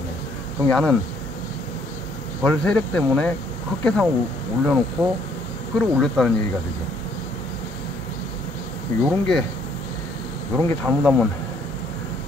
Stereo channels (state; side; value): normal; both; correlation 0.65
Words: 그럼 야는 벌 세력 때문에 헛개상을 올려놓고 끌어올렸다는 얘기가 되죠. 요런 게 잘못하면